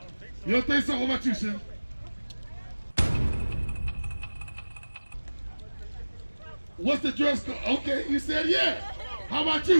You don't think so? What about you, Sim? What's the dress code? Okay, you said yeah. How about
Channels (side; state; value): both; inverted; correlation -1.00